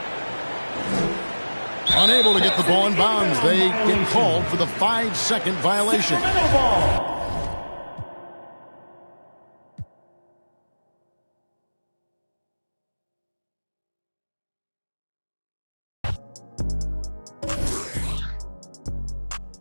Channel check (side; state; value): both; inverted; correlation -1.00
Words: Unable to get the ball in bounds. They get called for the 5-second violation.